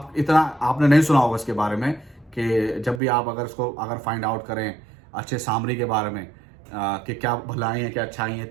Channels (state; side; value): drops out; left; at 3.0 s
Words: नहीं सुना होगा इसके बारे में, कि जब भी आप अगर फाइंड आउट करें अच्छे सामरी के बारे में, कि क्या भलाई है क्या अच्छाई है,